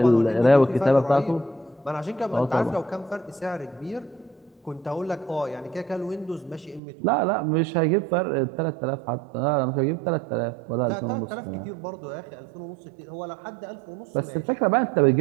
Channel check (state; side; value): drops out; left; at 6.8 s